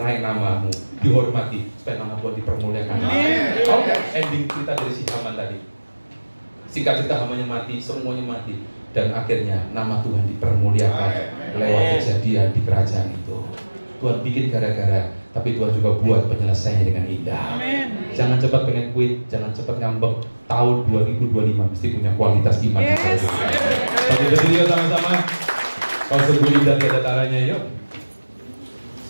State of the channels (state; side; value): inverted; both; correlation -1.00